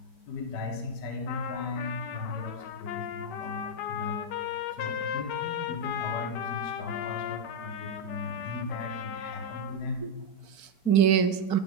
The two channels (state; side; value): late; right; 4.5 ms